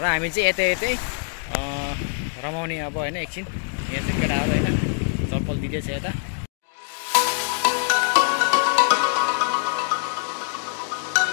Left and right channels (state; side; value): silent; right; digital silence